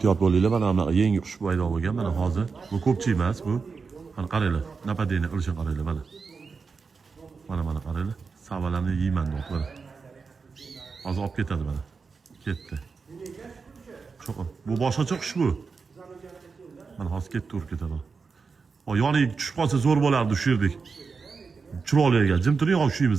bo'linglar. Mana bunaqa yangi qush paydo bo'lgan. Mana hozir bu ko'pchi emas bu. Mana qaranglar. Napadeni qilishni qaranglar mana. Mana qaranglar. Savalarni yeyman deb mana. Hozir olib ketadi mana. Ketdi. Bu boshqacha qush bu. Mana hozir ketdi, urib ketadi. O yoniga tushib qolsa zo'r bo'lardi shu yerdik. Chiroyli ekan. Jim turing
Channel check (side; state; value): left; quieter; 4.9 dB